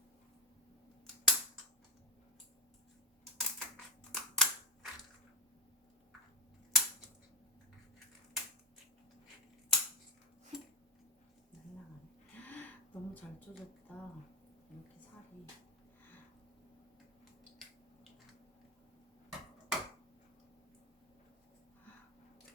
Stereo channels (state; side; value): normal; both; correlation 0.03